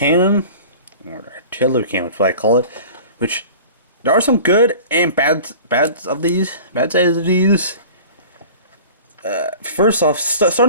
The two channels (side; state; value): both; inverted; correlation -0.41